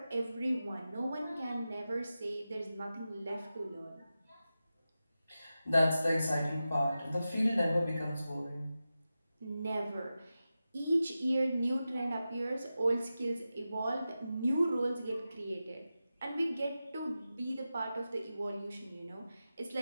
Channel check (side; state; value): both; inverted; correlation -0.92